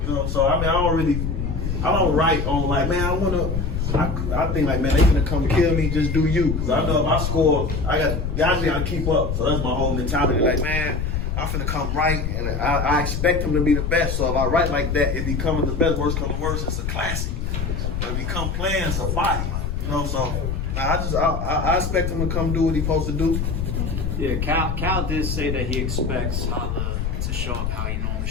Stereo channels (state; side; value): noise; left; rumble, 2 dB below the sound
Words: You know, so I don't write on like, man, I think like, man, they gonna come kill me. Just do you. Cause I know if I score, guys gotta keep up. So that's my whole mentality. Like, man, I'm finna come right, and I expect him to be the best. So if I write like that, it becomes the best. Worst comes to worst, it's a classic. But if he come playing, it's a body. You know, so I expect him to come do what he's supposed to do. Yeah, Cal did say that he expects Holla to show up how he normally